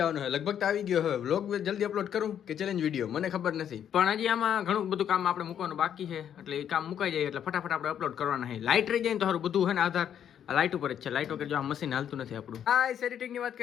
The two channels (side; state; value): right; quieter; 9.3 dB